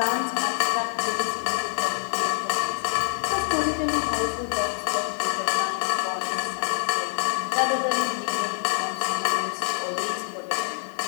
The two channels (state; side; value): silent; right; digital silence